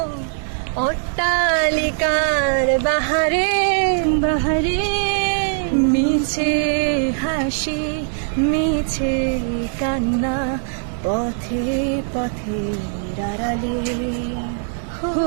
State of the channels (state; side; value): silent; left; digital silence